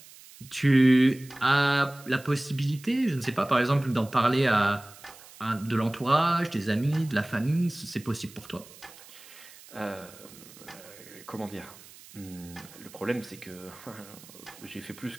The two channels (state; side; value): noise; right; hiss, 20 dB below the sound